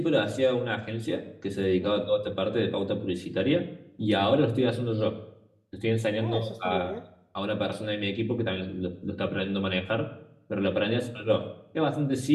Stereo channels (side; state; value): both; identical; correlation 1.00